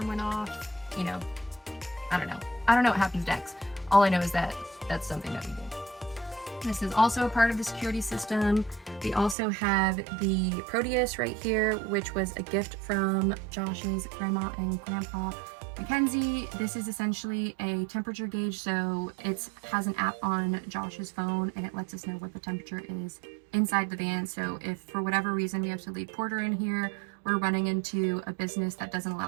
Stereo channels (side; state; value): left; drops out; at 9.3 s